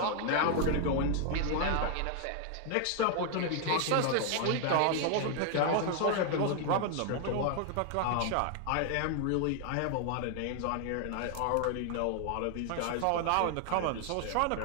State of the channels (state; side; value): different; both; correlation 0.00